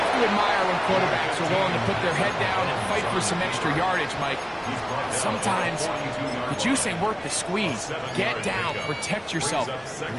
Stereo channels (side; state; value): both; identical; correlation 1.00